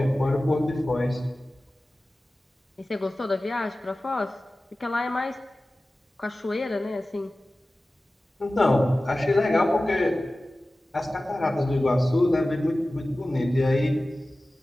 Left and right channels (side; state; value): both; normal; correlation 0.96